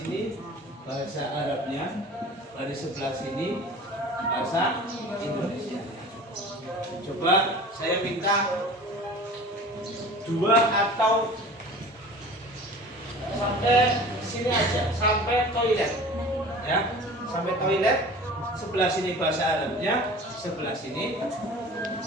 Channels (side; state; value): both; normal; correlation 0.41